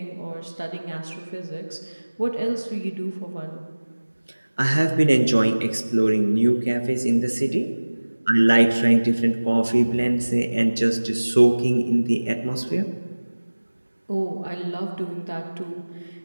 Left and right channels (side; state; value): both; inverted; correlation -1.00